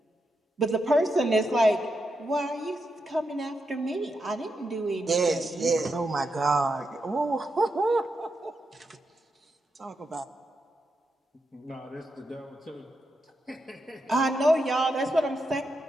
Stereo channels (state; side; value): normal; both; correlation 0.85